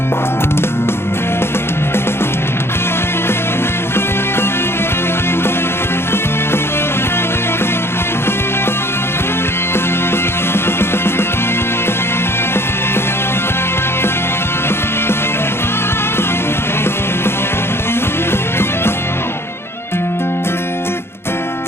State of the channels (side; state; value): right; late; 0.12 ms